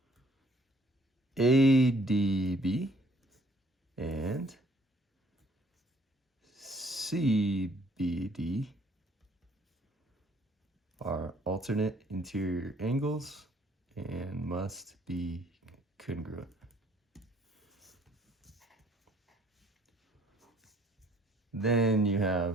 ADB and CBD are alternate interior angles and must be congruent. Then you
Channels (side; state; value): both; normal; correlation 0.60